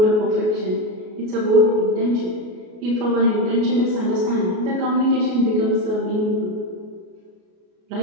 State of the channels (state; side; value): late; left; 33 ms